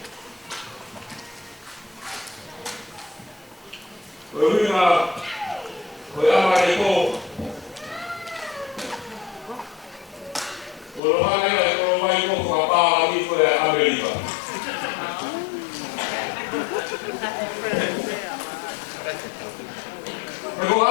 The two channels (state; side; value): drops out; right; at 11.0 s